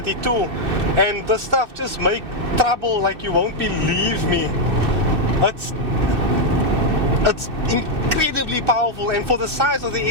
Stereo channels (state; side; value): late; left; 2.6 ms